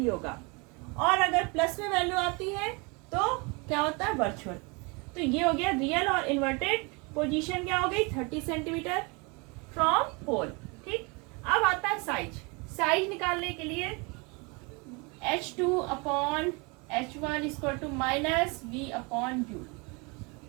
होगा। और अगर प्लस में वैल्यू आती है तो क्या होता है, वर्चुअल। तो ये हो गया रियल और इन्वर्टेड पोजीशन क्या हो गई 30 सेंटीमीटर फ्रॉम पोल। ठीक, अब आता है साइज। साइज निकालने के लिए H2 upon H1 equal to minus V upon U।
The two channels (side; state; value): left; quieter; 29.6 dB